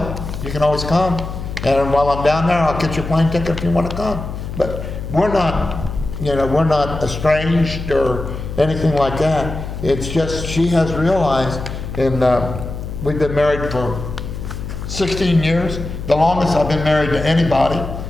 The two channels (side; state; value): left; noise; hum, 7 dB below the sound